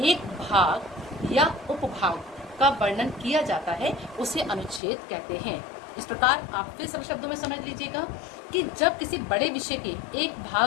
एक भाग या उपभाग का वर्णन किया जाता है, उसे अनुच्छेद कहते हैं। इस प्रकार आप फिर सरल शब्दों में समझ लीजिएगा कि जब किसी बड़े विषय के एक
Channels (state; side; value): drops out; right; at 4.8 s